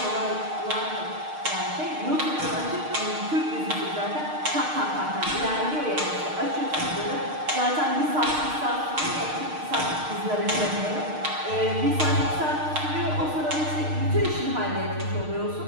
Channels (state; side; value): late; left; 6.5 ms